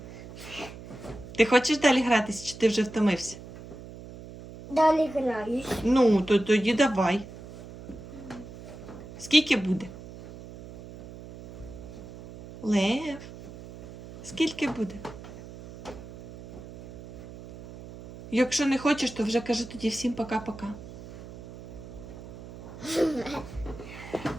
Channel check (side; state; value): right; noise; hum, 14 dB below the sound